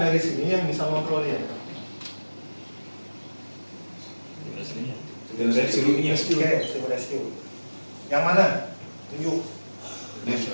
sini yang bisa kontrol dia? Oke, tim rescue. Yang mana? Tunjuk.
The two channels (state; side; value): inverted; both; correlation -1.00